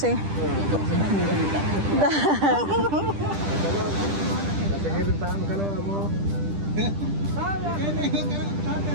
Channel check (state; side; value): late; left; 10 ms